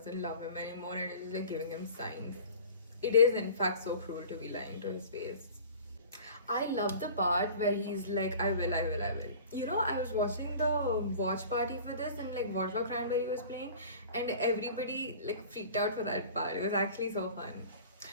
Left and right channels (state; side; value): inverted; both; correlation -0.42